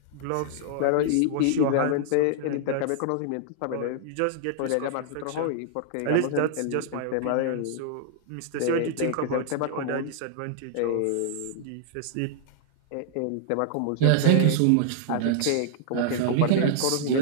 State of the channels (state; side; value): different; both; correlation -0.01